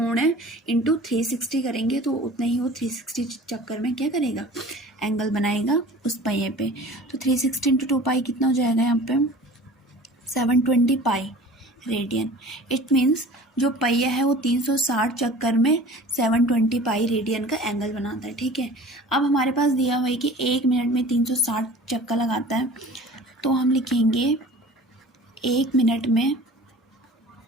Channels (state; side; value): normal; both; correlation 0.43